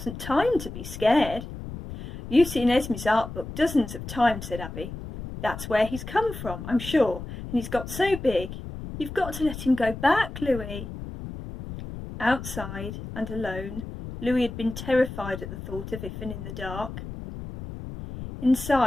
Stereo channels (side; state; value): left; noise; rumble, 10 dB below the sound